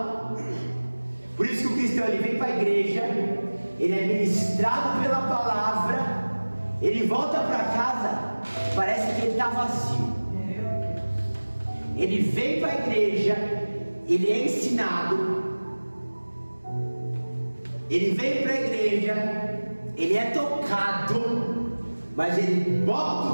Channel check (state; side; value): inverted; both; correlation -1.00